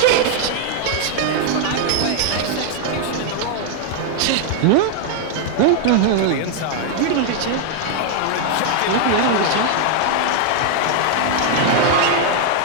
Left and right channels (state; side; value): different; both; correlation 0.00